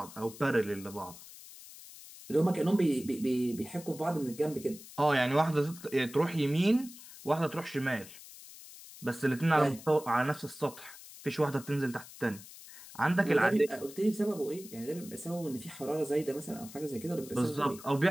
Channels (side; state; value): left; noise; hiss, 17 dB below the sound